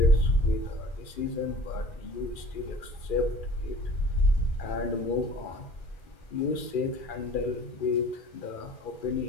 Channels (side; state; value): right; late; 2.4 ms